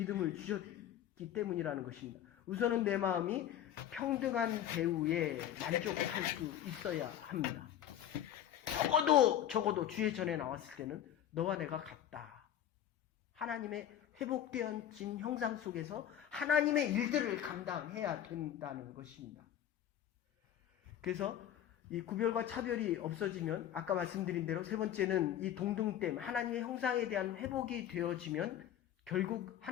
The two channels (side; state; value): right; quieter; 10.8 dB